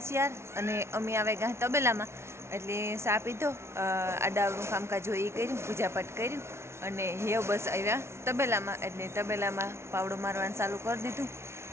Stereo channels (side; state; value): left; late; 0.13 ms